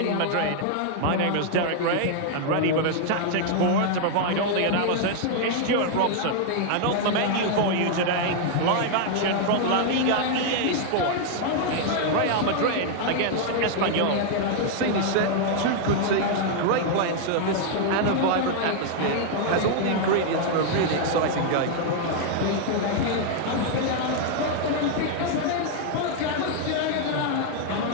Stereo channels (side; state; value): both; different; correlation 0.00